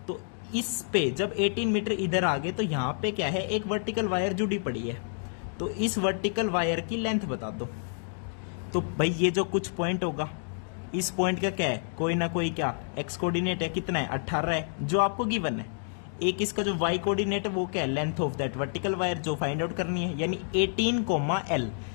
तो इस पे जब 18 मीटर इधर आ गए तो यहाँ पे क्या है? एक वर्टिकल वायर जुड़ी पड़ी है, तो इस वर्टिकल वायर की लेंथ बता दो। तो भाई ये जो कुछ पॉइंट होगा, इस पॉइंट का क्या है, कोई ना कोई क्या एक्स कोऑर्डिनेट है, कितना है 18 है जो आपको गिवन है। एक इसका जो वाई कोऑर्डिनेट है वो क्या है, length of that vertical wire जो फाइंड आउट करनी है, यानी 18, L।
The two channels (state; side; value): silent; right; digital silence